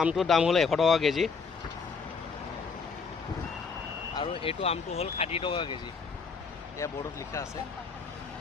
আমটোৰ দাম হ'ল 100 টকা কেজি আৰু এইটো আমটো হ'ল 60 টকা কেজি ये बोर्ड लिखा আছে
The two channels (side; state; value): right; quieter; 5.1 dB